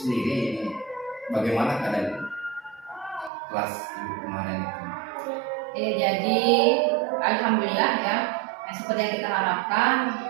ini bagaimana keadaan kelas Ibu kemarin itu? Jadi alhamdulillah ya, seperti yang kita harapkan,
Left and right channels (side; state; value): left; drops out; at 3.3 s